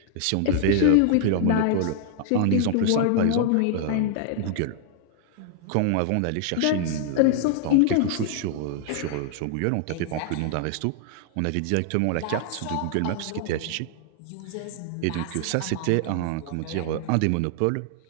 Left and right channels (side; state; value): both; different; correlation 0.00